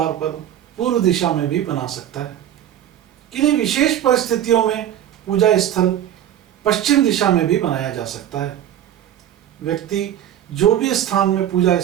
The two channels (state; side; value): quieter; left; 11.1 dB